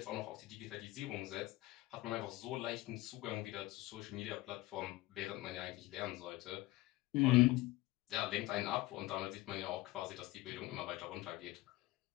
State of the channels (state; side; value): quieter; right; 19.1 dB